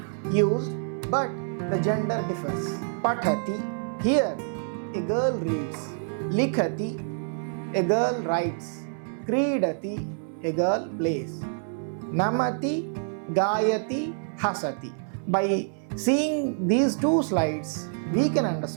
used, but the gender differs. Pathati, here a girl reads. Likhati, a girl writes. Kridati, a girl plays. Namati, Gayati, Hasati. By seeing these two slides, we can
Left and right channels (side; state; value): left; silent; 60 dB below the other